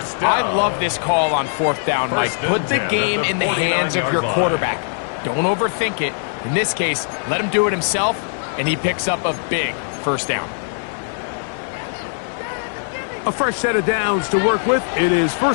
I love this call on 4th down, Mike. Put the game in the hands of your quarterback. Don't overthink it. In this case, let him do it himself, and he picks up a big first down. A fresh set of downs to work with. It is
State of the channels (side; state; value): right; silent; digital silence